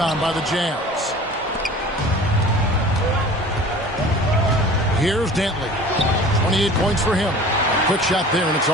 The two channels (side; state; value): both; normal; correlation 0.43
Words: by the Jazz. Here's Dentley. 28 points for him. Quick shot there, and it's